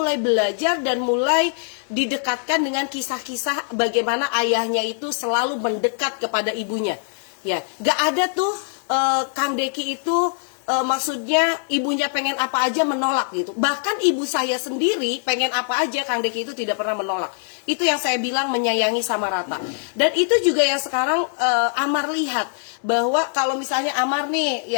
belajar dan mulai didekatkan dengan kisah-kisah bagaimana ayahnya itu selalu mendekat kepada ibunya. Ya, gak ada tuh Kang Deki itu maksudnya ibunya pengen apa aja menolak gitu. Bahkan ibu saya sendiri pengen apa aja Kang Deki itu tidak pernah menolak. Itu yang saya bilang menyayangi sama rata. Dan itu juga yang sekarang Amar lihat, bahwa kalau misalnya Amar nih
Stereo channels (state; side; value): silent; right; digital silence